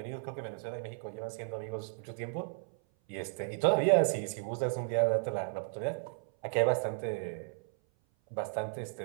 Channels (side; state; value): left; silent; 55 dB below the other